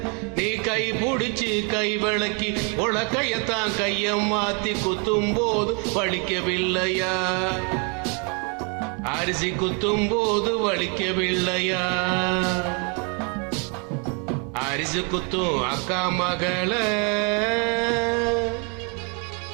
நீ கை பிடிச்சு கை விளக்கி உலக்கையத்தான் கையம் மாத்தி குத்தும் போது வலிக்கவில்லையா? அரிசி குத்தும் போது வலிக்கவில்லையா? அரிசி குத்தும் அக்கா மகள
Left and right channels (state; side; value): quieter; left; 35.5 dB